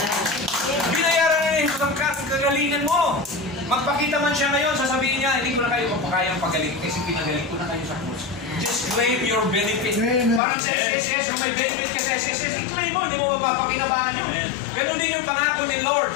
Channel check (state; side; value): drops out; right; at 10.4 s